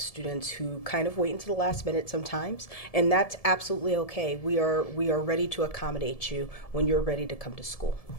students who kind of wait until the last minute sometimes, and that's absolutely okay. We are ready to accommodate you when you're ready to come to school.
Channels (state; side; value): late; right; 1.7 ms